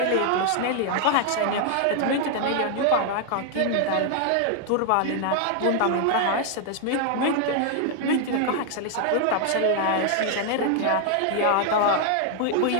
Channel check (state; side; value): different; both; correlation 0.00